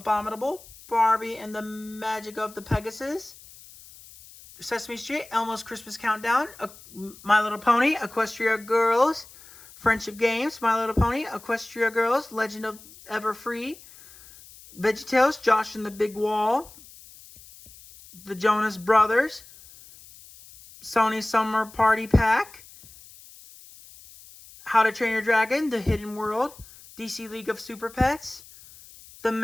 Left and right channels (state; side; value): noise; left; hiss, 21 dB below the sound